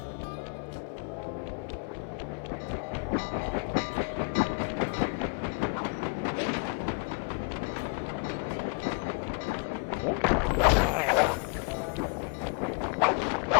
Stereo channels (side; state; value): right; quieter; 38.4 dB